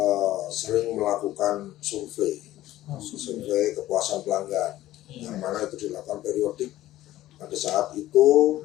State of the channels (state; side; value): quieter; right; 14.9 dB